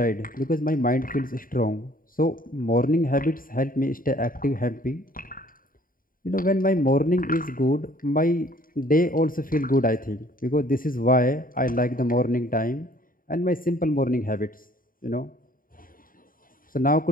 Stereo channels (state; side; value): late; right; 0.41 ms